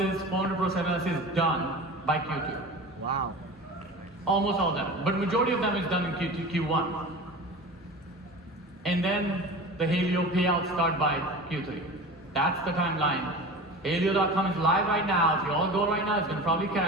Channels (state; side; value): normal; both; correlation 0.34